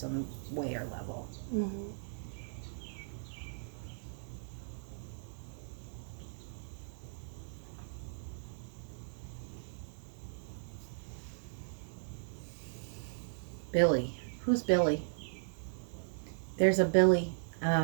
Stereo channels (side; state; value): left; silent; digital silence